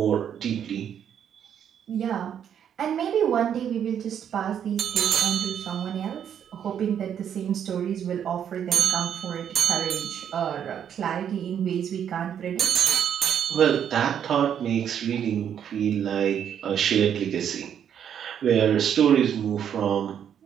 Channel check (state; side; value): quieter; left; 8.9 dB